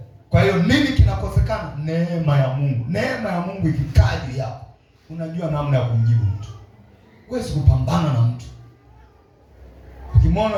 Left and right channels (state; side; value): identical; both; correlation 1.00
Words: Kwa hiyo nini kinakosekana? Neema ya Mungu. Neema ya Mungu ikikaa juu yako, unajua namna ya kumjibu mtu. Huwezi kupambana na mtu.